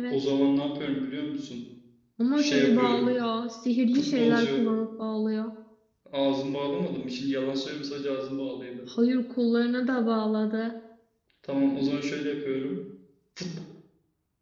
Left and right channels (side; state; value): both; identical; correlation 1.00